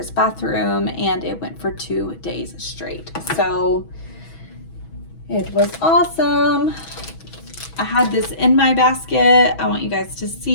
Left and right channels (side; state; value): right; late; 6.2 ms